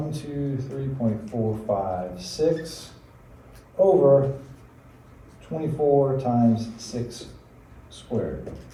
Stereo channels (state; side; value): identical; both; correlation 1.00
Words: over 24 times 6 squared.